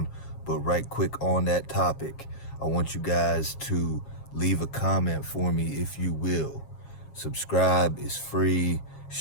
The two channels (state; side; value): late; right; 7.4 ms